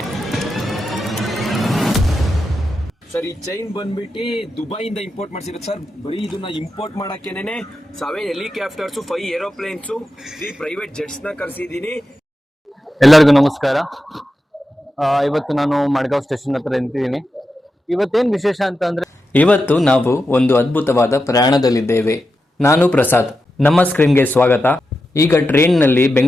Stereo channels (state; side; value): normal; both; correlation 0.89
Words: ಸರ್ ಈ ಚೈನ್ ಬಂದ್ಬಿಟ್ಟು ದುಬೈಯಿಂದ ಇಂಪೋರ್ಟ್ ಮಾಡ್ಸಿರೋದು ಸರ್. ಬರೀ ಇದನ್ನ ಇಂಪೋರ್ಟ್ ಮಾಡಕ್ಕೇನೆ 7 ಹೆಲಿಕಾಪ್ಟರ್ಸ್, 5 ಏರೋಪ್ಲೇನ್ಸ್, 3 ಪ್ರೈವೇಟ್ ಜೆಟ್ಸ್ ನ ಕರೆಸಿದೀನಿ. ಎಲ್ಲರಿಗೂ ನಮಸ್ಕಾರ. ಇವತ್ತು ನಾನು ಮಡ್ಗಾಂವ್ ಸ್ಟೇಷನ್ ಹತ್ರ ನಿಂತಿದ್ದೀನಿ. ಇವತ್ತೇನು ವಿಶೇಷ ಅಂತ ಅಂದ್ರೆ, ಇವತ್ತು ನಾವು ಒಂದು ಅದ್ಭುತವಾದ ಪ್ರಯಾಣದಲ್ಲಿದ್ದೇವೆ. ನಾನು ಪ್ರಸಾದ್, ನಮ್ಮ ಸ್ಕ್ರೀನ್ಗೆ ಸ್ವಾಗತ. ಈಗ ಟ್ರೈನ್ನಲ್ಲಿ